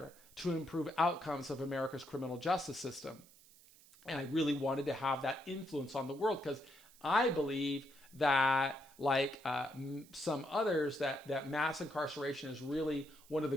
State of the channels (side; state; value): right; noise; hiss, 24 dB below the sound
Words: to improve outcomes of America's criminal justice system. And I really wanted to have that influence on the world, because I believe that, like some others, that mass incarceration is really one of the